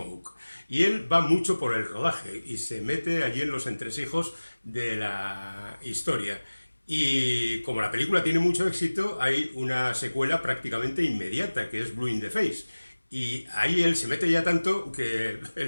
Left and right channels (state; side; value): inverted; both; correlation -1.00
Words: Y él va mucho por el rodaje y se mete allí en los entresijos de la historia. Y como la película tiene mucho éxito, hay una secuela prácticamente inmediata, que es Blue in the Face. Y ahí él se mete ya tanto que